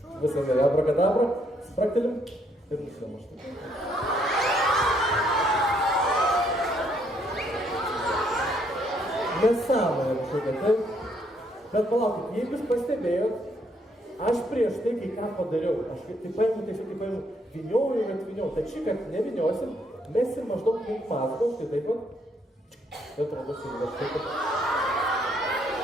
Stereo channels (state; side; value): normal; both; correlation 0.70